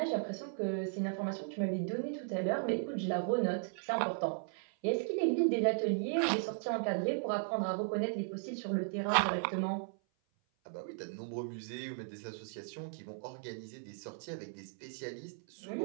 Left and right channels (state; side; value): silent; left; 53 dB below the other